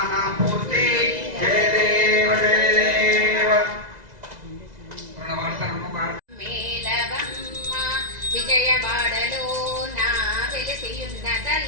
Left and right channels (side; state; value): left; late; 2.0 ms